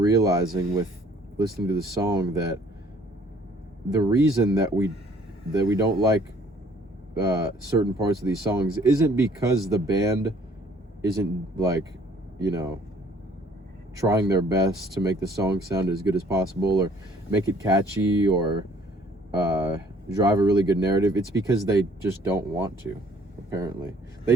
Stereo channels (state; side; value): normal; both; correlation 0.58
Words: with listening to the song that the reason that we don't like certain parts of these songs isn't because the band isn't trying their best to make the song sound as good as possible or make it catchy or drive a really good narrative. It's because they just don't want to, apparently. They